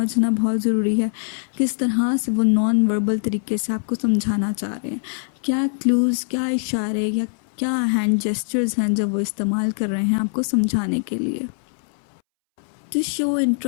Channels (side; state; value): right; silent; 64 dB below the other